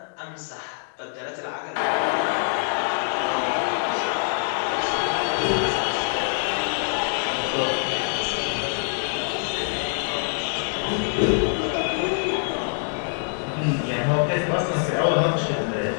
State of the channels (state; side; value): silent; right; digital silence